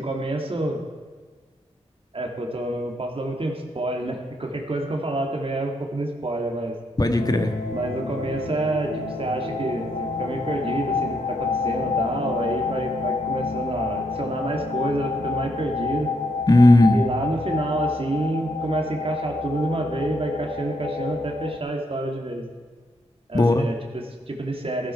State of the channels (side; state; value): both; normal; correlation 0.77